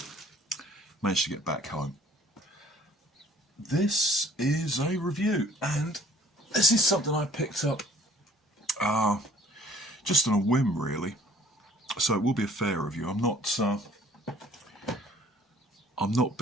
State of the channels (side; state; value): both; normal; correlation 0.55